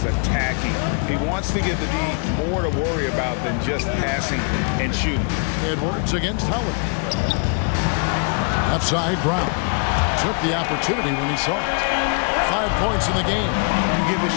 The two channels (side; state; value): right; quieter; 40.0 dB